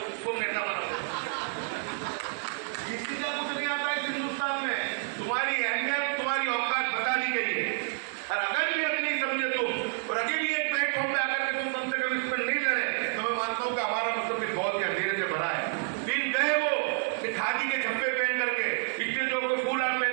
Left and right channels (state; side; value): silent; left; 58 dB below the other